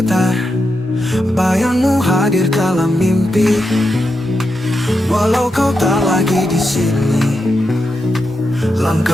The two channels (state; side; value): normal; both; correlation 0.86